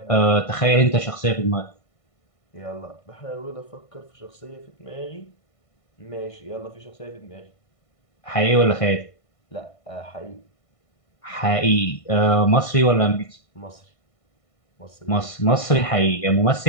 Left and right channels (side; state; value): right; late; 1.5 ms